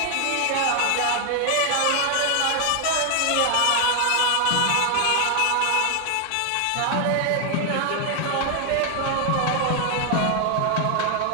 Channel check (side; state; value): both; different; correlation 0.00